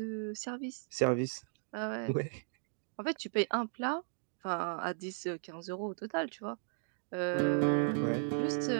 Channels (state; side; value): silent; left; digital silence